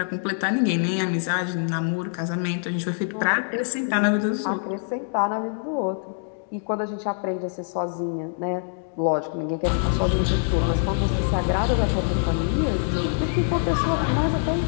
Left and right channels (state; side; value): silent; right; digital silence